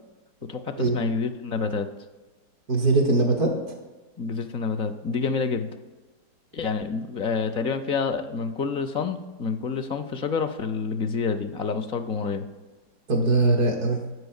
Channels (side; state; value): left; late; 4.0 ms